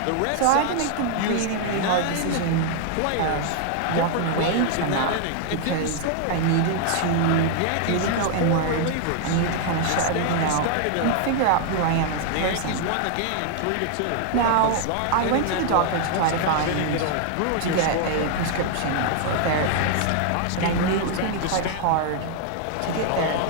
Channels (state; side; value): different; both; correlation 0.00